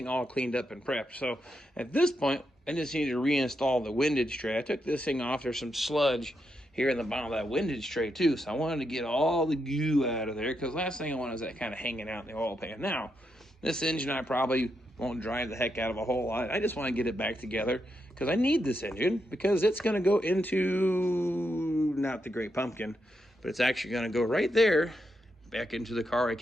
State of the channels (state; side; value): normal; both; correlation 0.83